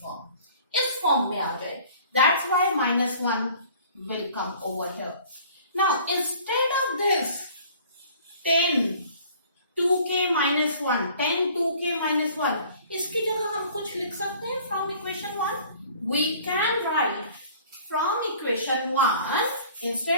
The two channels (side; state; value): both; inverted; correlation -0.51